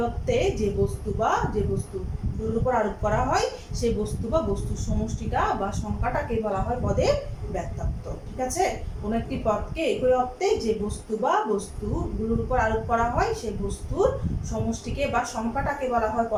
অর্থে যে বস্তু বা যে বস্তুর উপর আরোপ করা হয় সেই বস্তু বা বস্তুর সমষ্টিটা বা সংখ্যাটাকে বলা হয় পদের ব্যক্তত্ব। ঠিক আছে, কোনো একটি পদকে একই অর্থে যে বস্তু বা বস্তুগুলোর উপর আরোপ করা হয় সেই বস্তুর সমষ্টিকে বা সংখ্যাটাকে বলা হয়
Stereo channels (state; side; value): identical; both; correlation 1.00